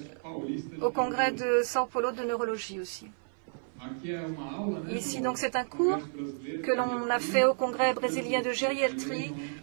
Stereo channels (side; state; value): left; silent; 55 dB below the other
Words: au congrès de Sao Paulo de neurologie aussi. Ici, donc, c'est un cours que l'on a fait au congrès brésilien de gériatrie